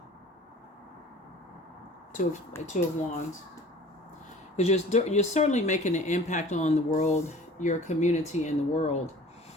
Two of Wands. Because you're certainly making an impact on the world, your community and the world.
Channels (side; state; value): both; normal; correlation 0.46